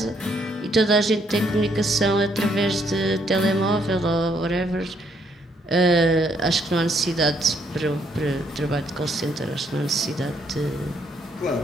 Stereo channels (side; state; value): both; normal; correlation 0.71